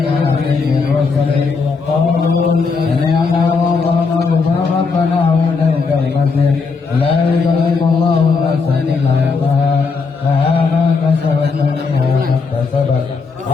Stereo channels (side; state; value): right; quieter; 4.7 dB